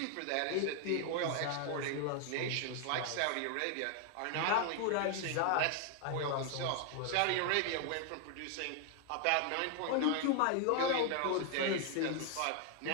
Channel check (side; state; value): both; different; correlation 0.00